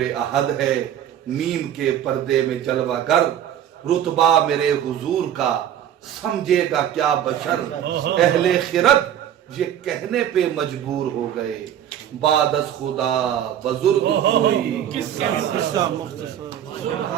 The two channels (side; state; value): left; quieter; 10.3 dB